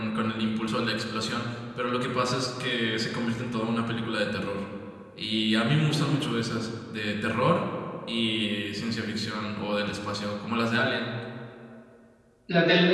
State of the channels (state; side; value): identical; both; correlation 1.00